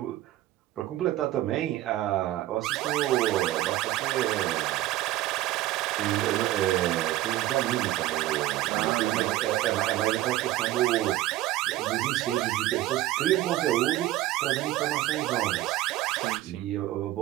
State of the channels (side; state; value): left; quieter; 15.6 dB